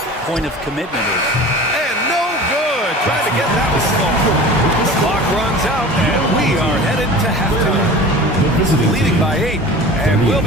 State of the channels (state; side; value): normal; both; correlation 0.38